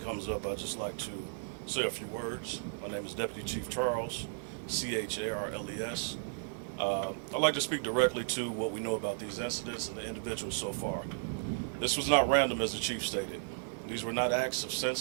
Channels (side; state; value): left; silent; digital silence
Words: comes up, I'd just like to say a few words. My name is Deputy Chief Charles, Charles. I'd like to speak directly to what we know about these incidents and the individuals so far. This was not random, as the Chief stated. These were not acts of